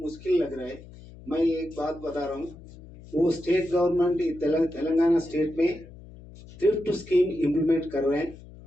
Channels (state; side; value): noise; left; hum, 18 dB below the sound